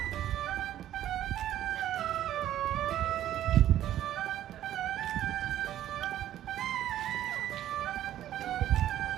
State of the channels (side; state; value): left; quieter; 12.2 dB